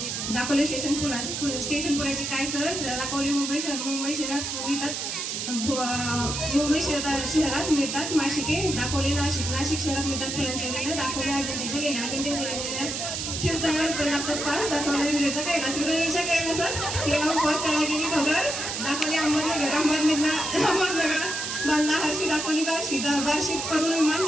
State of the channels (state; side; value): noise; right; hiss, 3 dB below the sound